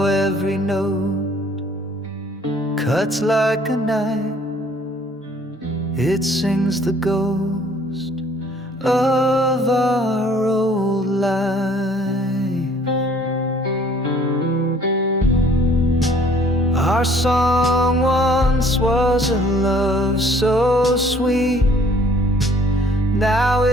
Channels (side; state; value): both; normal; correlation 0.58